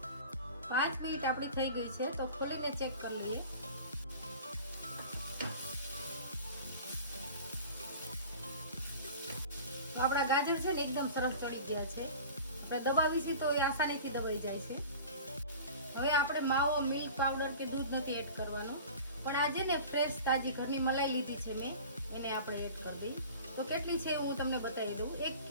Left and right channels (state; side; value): inverted; both; correlation -0.39